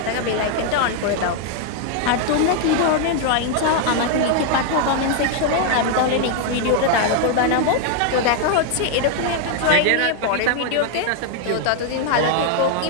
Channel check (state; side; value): different; both; correlation 0.00